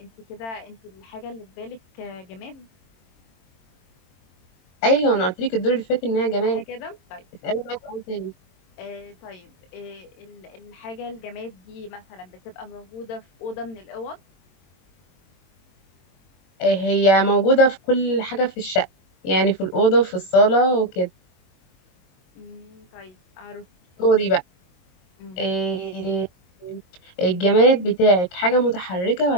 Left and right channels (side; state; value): right; late; 22 ms